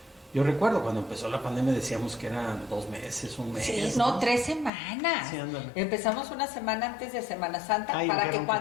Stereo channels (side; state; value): right; drops out; at 4.7 s